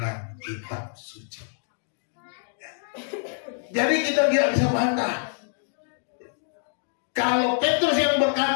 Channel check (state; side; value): silent; right; digital silence